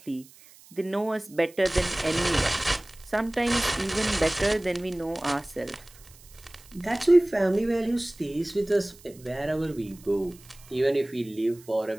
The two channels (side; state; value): right; noise; hiss, 24 dB below the sound